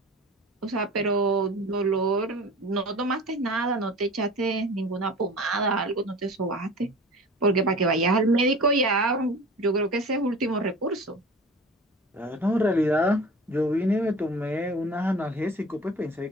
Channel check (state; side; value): normal; both; correlation 0.39